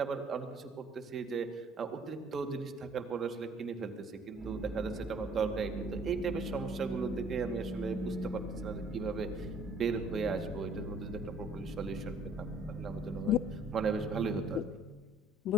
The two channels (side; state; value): both; normal; correlation 0.57